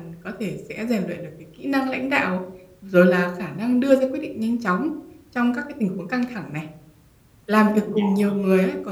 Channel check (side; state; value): both; identical; correlation 1.00